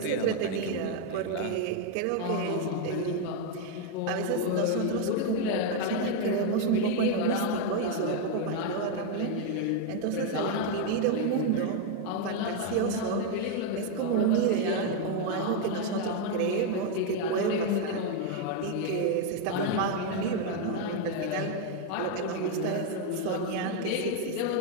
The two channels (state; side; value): different; both; correlation 0.01